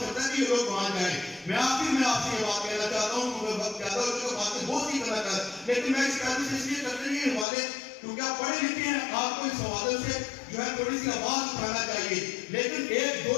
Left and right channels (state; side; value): drops out; right; at 7.5 s